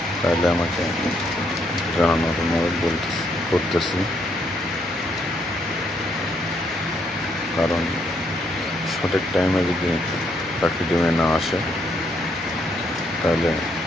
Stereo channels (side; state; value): both; normal; correlation 0.73